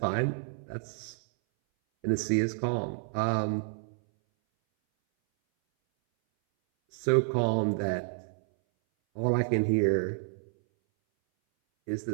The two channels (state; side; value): silent; left; 58 dB below the other